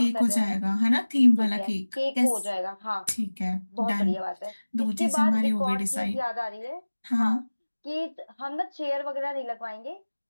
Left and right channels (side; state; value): both; inverted; correlation -1.00